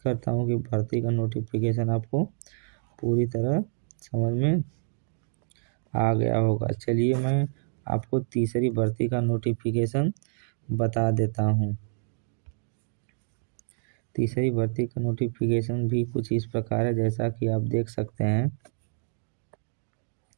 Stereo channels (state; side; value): silent; left; digital silence